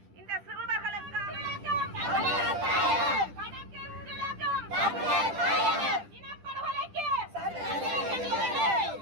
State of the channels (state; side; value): late; left; 10 ms